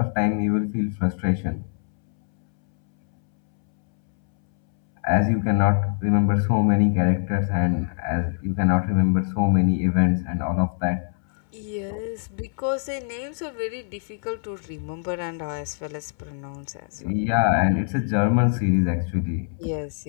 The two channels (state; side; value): silent; right; 63 dB below the other